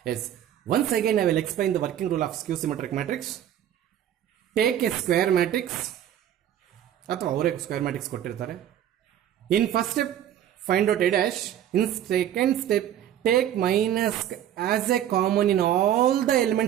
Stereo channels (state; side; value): quieter; left; 10.9 dB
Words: Yes, once again I will explain the working rule of skew symmetric matrix. Take a square matrix, ಅಥವಾ ಅವರೇ ಸ್ಕ್ವೇರ್ ಮ್ಯಾಟ್ರಿಕ್ಸ್ ಕೊಟ್ಟಿರ್ತಾರೆ. In first step find out A dash. In second step, take minus as a common in all the